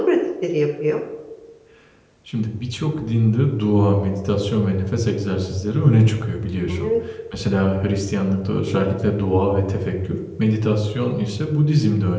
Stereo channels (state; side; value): identical; both; correlation 1.00